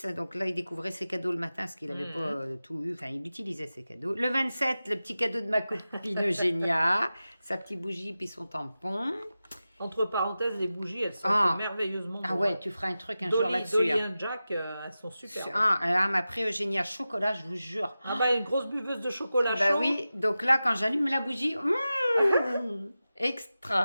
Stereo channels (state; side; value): inverted; both; correlation -0.94